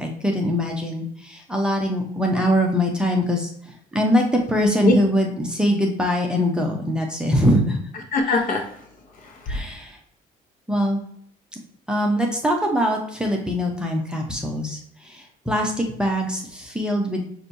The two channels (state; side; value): normal; both; correlation 0.66